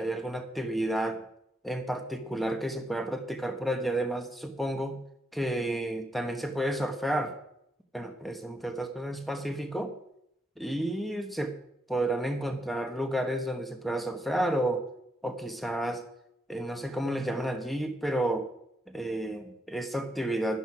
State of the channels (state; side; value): normal; both; correlation 0.79